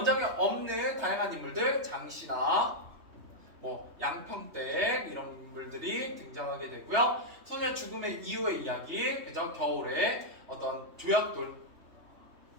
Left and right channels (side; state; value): left; late; 3.2 ms